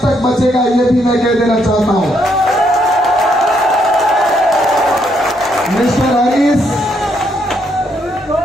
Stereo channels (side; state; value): both; normal; correlation 0.74